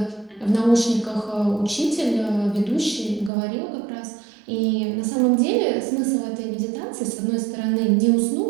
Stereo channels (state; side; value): drops out; left; at 3.3 s